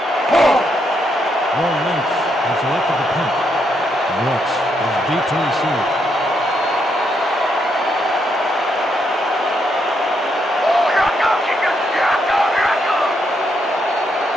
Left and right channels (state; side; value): normal; both; correlation 0.78